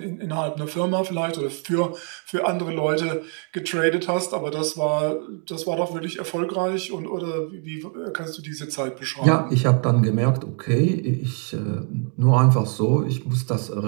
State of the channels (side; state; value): left; quieter; 39.4 dB